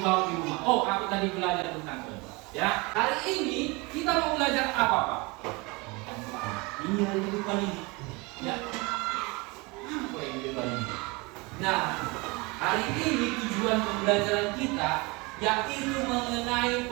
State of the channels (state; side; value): quieter; left; 26.1 dB